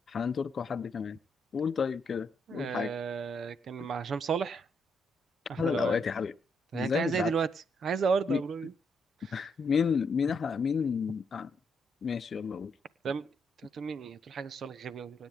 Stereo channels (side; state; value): both; normal; correlation 0.76